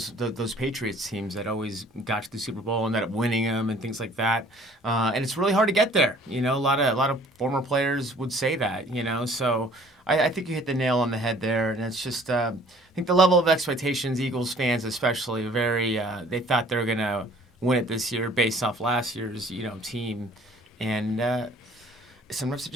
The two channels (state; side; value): normal; both; correlation 0.54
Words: Patriots teams that always got to the Super Bowl and ended up winning them and things like that. And it's really hard to get there. You know, a lot of former players would say that. You know, so I think you hit the nail on the head there. And it's just I think the level of expectations, Eagles fans especially, very they thought they were gonna win it this year based off last year's team, and sometimes